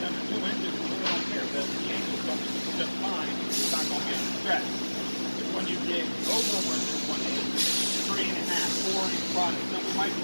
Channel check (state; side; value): inverted; both; correlation -1.00